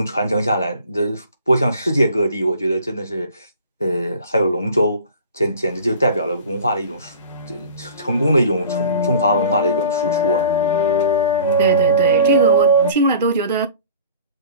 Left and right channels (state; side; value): inverted; both; correlation -0.43